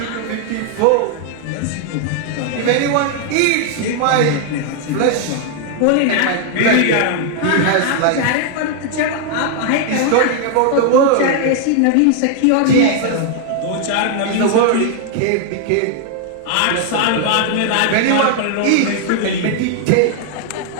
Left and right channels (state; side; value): different; both; correlation 0.00